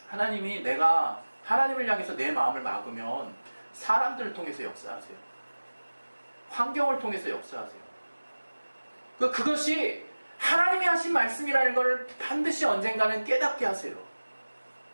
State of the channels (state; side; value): inverted; both; correlation -1.00